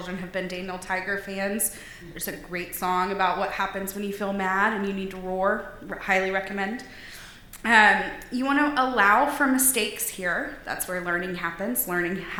have been Daniel Tiger fans, there's a great song about what happens when you feel mad and you need to roar. Highly recommend. You want to allow for mistakes here. That's where learning happens. Learning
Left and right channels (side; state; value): both; identical; correlation 1.00